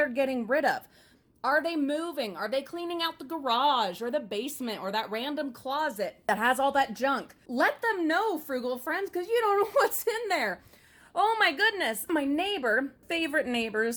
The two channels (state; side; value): identical; both; correlation 1.00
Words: getting rid of. Are they moving? Are they cleaning out the garage or the basement or that random closet that has all that junk? Let them know, frugal friends, because you don't know what's in there. Oh my goodness. My neighbor, favorite